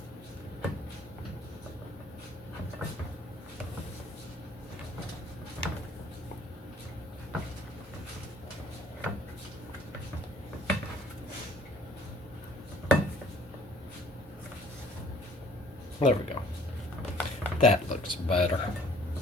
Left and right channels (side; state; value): both; normal; correlation 0.55